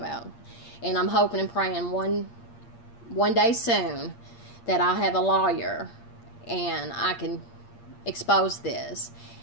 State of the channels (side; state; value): right; late; 8.6 ms